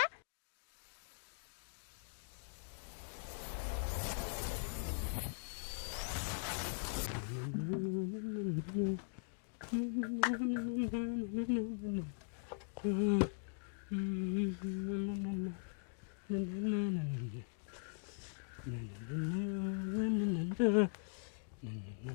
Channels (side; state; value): right; silent; digital silence